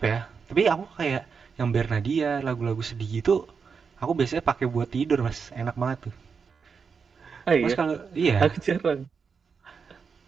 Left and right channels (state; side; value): quieter; left; 5.7 dB